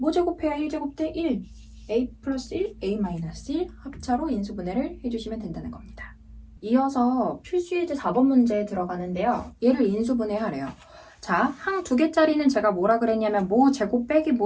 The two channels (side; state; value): both; identical; correlation 1.00